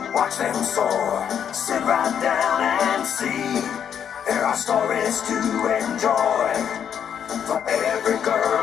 watch them soar, sit right down and see. There are stories to enjoy for every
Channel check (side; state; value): right; quieter; 8.5 dB